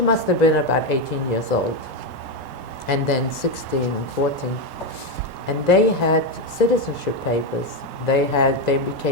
must have been about 18 years old, and then 16 and 14. And they had citizenship papers. They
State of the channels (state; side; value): late; left; 3.1 ms